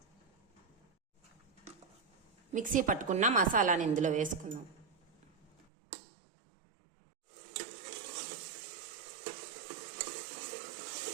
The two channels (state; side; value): drops out; left; at 5.7 s